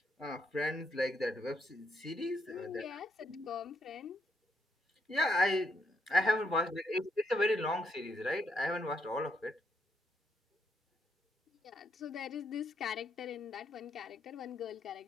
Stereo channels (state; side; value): normal; both; correlation 0.77